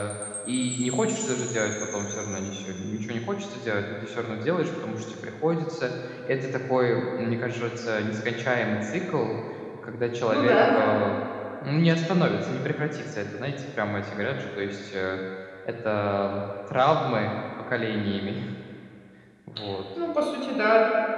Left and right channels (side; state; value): both; identical; correlation 1.00